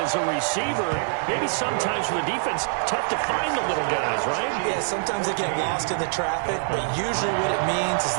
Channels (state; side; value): silent; left; digital silence